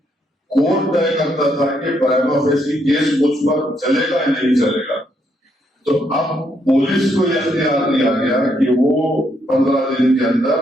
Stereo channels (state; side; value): normal; both; correlation 0.75